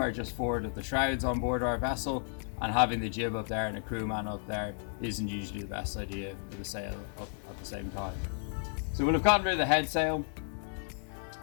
just forward of the shrouds on board our vessel, and having the jib up there and a crewman up there isn't usually the best idea for the sail up at the same time. So we'll have gotten rid of the head sail,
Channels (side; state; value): right; silent; 56 dB below the other